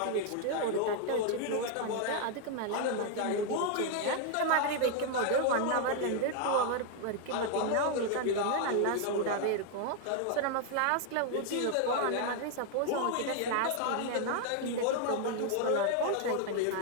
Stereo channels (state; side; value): different; both; correlation 0.00